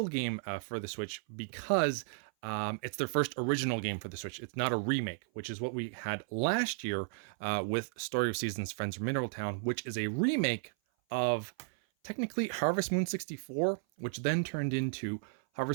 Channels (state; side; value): silent; left; 55 dB below the other